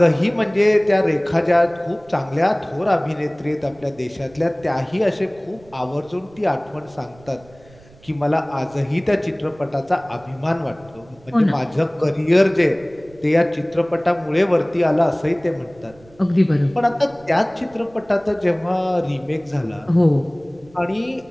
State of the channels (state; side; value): noise; right; rumble, 26 dB below the sound